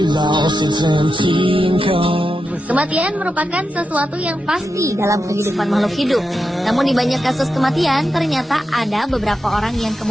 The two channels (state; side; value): normal; both; correlation 0.88